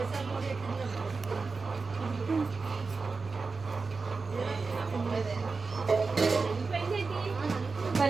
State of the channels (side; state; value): left; quieter; 4.3 dB